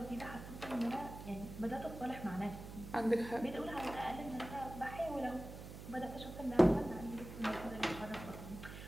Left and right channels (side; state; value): right; noise; hum, 11 dB below the sound